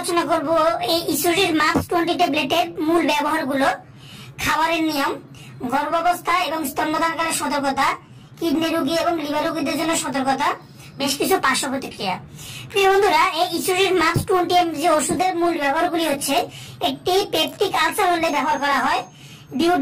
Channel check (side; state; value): both; identical; correlation 1.00